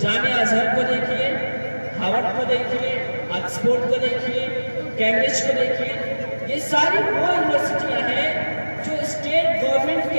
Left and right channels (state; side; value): inverted; both; correlation -1.00